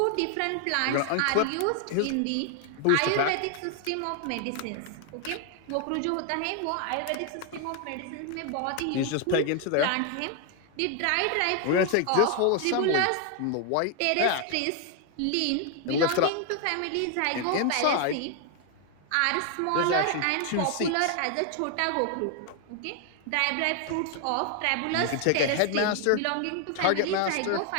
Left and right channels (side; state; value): both; different; correlation 0.00